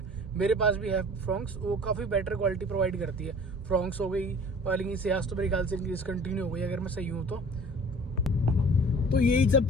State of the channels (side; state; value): both; normal; correlation 0.46